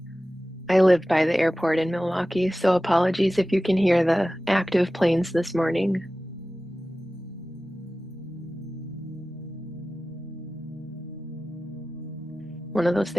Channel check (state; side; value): normal; both; correlation 0.95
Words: I live by the airport in Milwaukee, so apologies if you can hear the active planes this morning. One of those